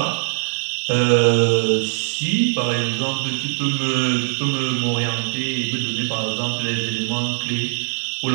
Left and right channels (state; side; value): silent; left; 65 dB below the other